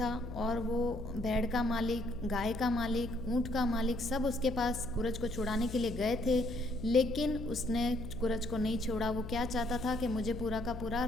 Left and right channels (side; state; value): left; noise; hum, 9 dB below the sound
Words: और वो भेड़ का मालिक, गाय का मालिक, ऊँट का मालिक सब उसके पास कुरज को छुड़ाने के लिए गए थे, लेकिन उसने कुरज को नहीं छोड़ा। वो क्या चाहता था कि मुझे पूरा का पूरा